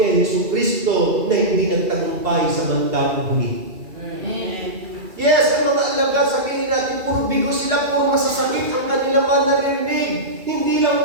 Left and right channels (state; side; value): late; left; 2.3 ms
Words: kay Jesucristo na hindi nagtagumpay sa bandang huli. Yes, ang mga alagad, sabihin natin, puro bigo sila, puro masasakit ang kanilang mga naririnig. Hindi lang